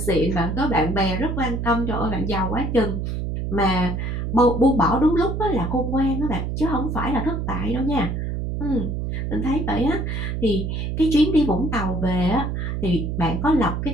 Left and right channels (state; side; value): noise; right; hum, 2 dB below the sound